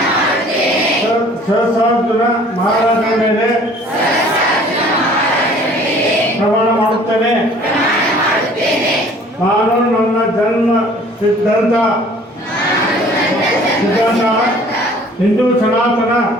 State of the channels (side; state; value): both; normal; correlation 0.52